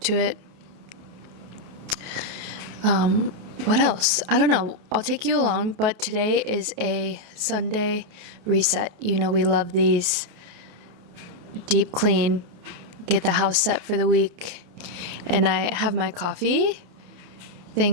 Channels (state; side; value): late; left; 28 ms